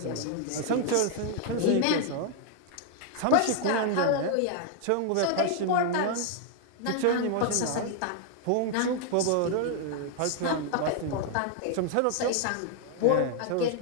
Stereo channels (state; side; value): different; both; correlation 0.00